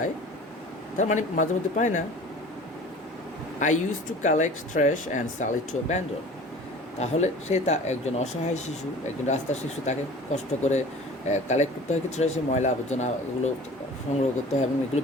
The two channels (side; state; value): both; normal; correlation 0.43